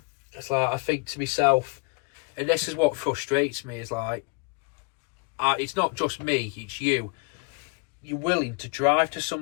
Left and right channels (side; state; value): right; quieter; 31.0 dB